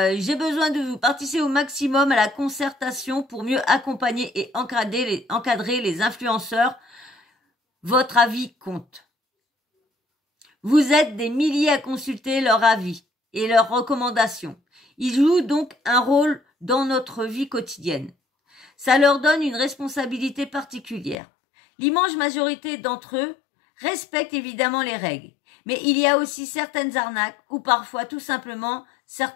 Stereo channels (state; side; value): drops out; right; at 21.2 s